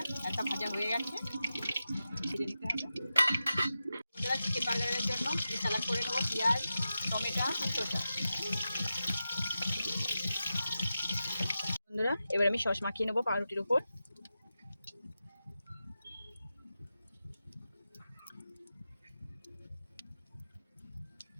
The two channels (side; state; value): both; inverted; correlation -0.91